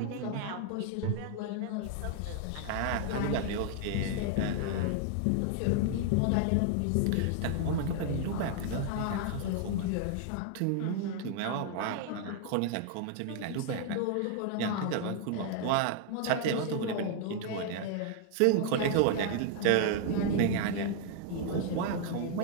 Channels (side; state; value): both; different; correlation 0.00